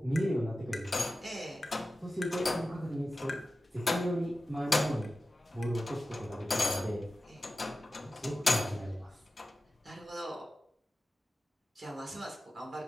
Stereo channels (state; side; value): normal; both; correlation 0.94